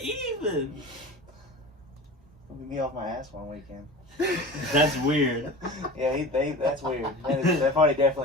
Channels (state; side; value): normal; both; correlation 0.35